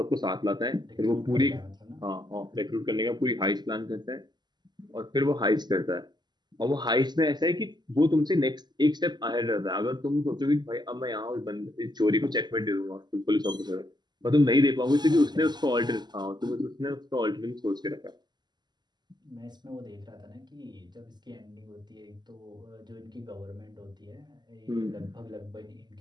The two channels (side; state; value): left; late; 0.21 ms